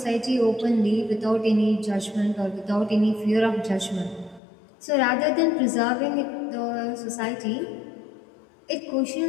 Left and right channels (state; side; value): drops out; right; at 4.4 s